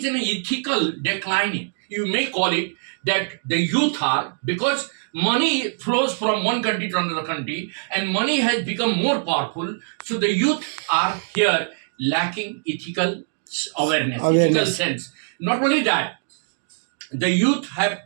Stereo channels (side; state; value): left; silent; digital silence